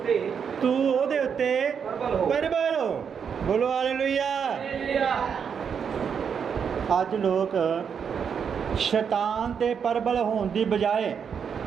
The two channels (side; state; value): left; quieter; 7.0 dB